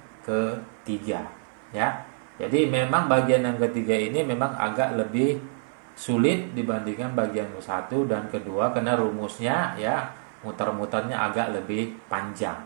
ketiga, ya. Jadi memang bagian yang ketiga ini memang agak lebih sulit dibandingkan bagian satu dan kedua karena rumusnya, ya, muter-muternya agak lebih panjang,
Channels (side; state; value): left; silent; 55 dB below the other